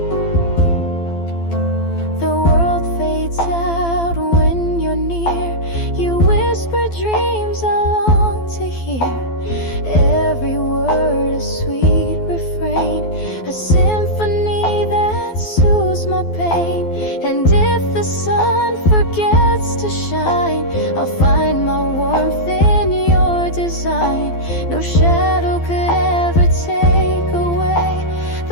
dreams I long to hear. Every word a sweet refrain, a symphony that soothes my pain. And if the sun forgets to shine, I'll find my warmth in your design. No shadow could ever take away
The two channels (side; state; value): right; late; 12 ms